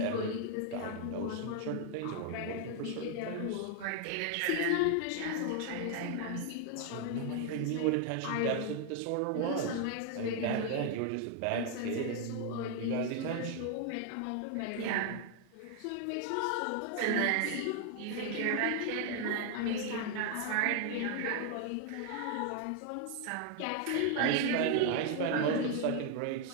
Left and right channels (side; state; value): both; different; correlation 0.00